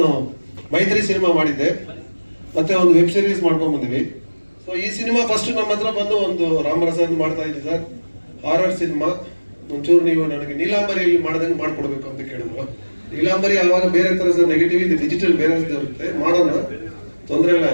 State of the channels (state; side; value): inverted; both; correlation -1.00